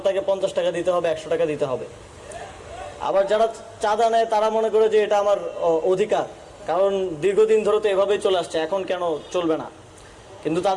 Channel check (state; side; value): identical; both; correlation 1.00